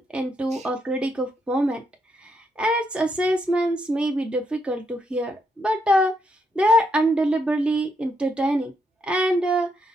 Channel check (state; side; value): normal; both; correlation 0.78